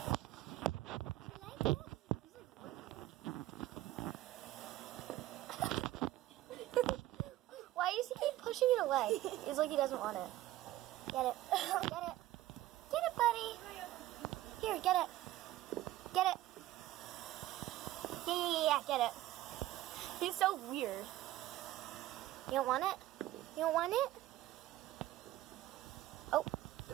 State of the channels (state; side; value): quieter; left; 15.1 dB